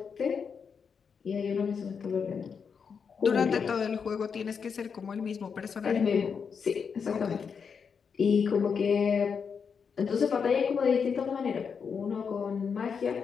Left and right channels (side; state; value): right; quieter; 6.2 dB